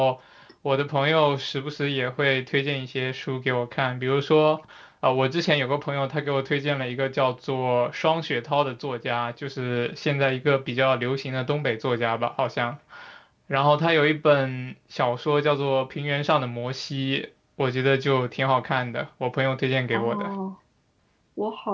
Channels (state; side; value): identical; both; correlation 1.00